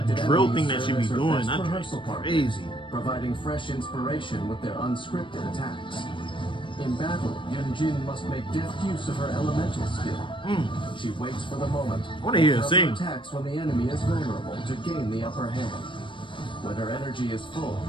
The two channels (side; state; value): right; late; 0.24 ms